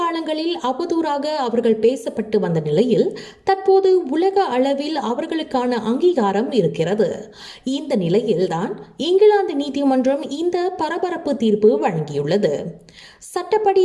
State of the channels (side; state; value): both; identical; correlation 1.00